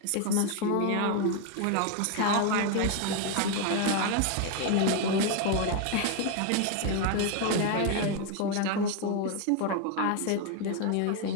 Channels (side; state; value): both; different; correlation 0.01